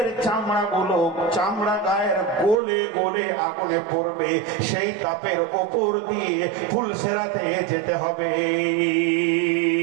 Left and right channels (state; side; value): drops out; left; at 2.6 s